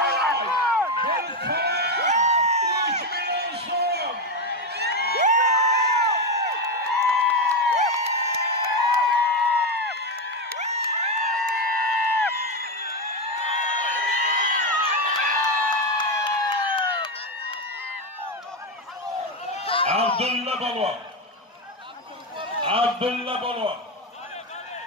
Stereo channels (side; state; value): both; normal; correlation 0.10